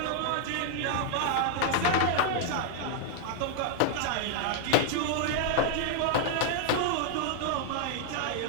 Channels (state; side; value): different; both; correlation 0.00